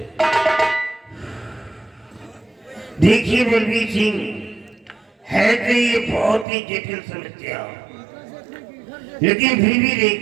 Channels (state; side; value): drops out; left; at 6.5 s